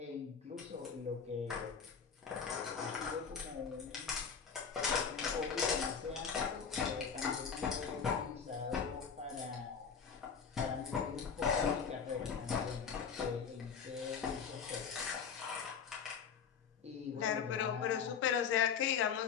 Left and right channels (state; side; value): quieter; right; 6.6 dB